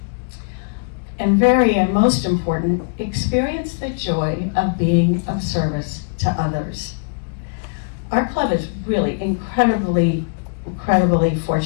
And most important, experience the joy of being of service to others. Our club is really incredibly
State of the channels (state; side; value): quieter; right; 35.0 dB